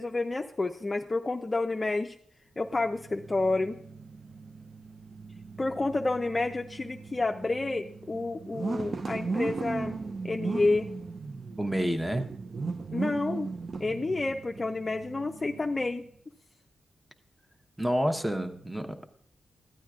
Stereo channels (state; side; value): normal; both; correlation 0.95